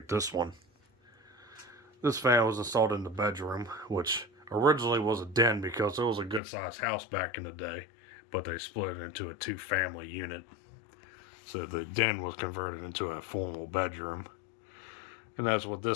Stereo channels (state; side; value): drops out; right; at 6.4 s